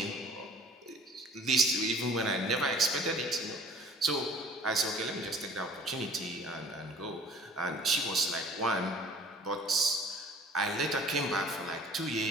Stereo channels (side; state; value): both; normal; correlation 0.51